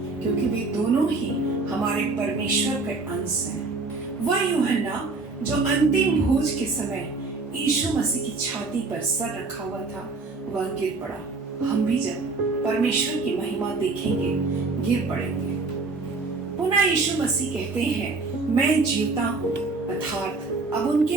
क्योंकि वे दोनों ही हमारे परमेश्वर के अंश हैं। वह यूहन्ना जो अंतिम भोज के समय यीशु मसीह की छाती पर सर रखा हुआ था, वह गिर पड़ा। हम भी जब परमेश्वर की महिमा देखेंगे गिर पड़ेंगे। पुनः यीशु मसीह कहते हैं, मैं जीवता हूँ, अर्थात अब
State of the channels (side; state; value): left; quieter; 3.8 dB